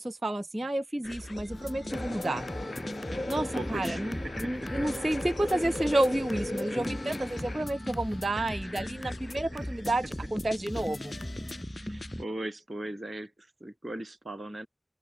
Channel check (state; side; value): normal; both; correlation 0.95